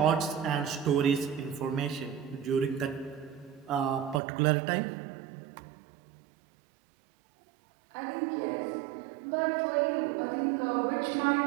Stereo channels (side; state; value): left; drops out; at 4.2 s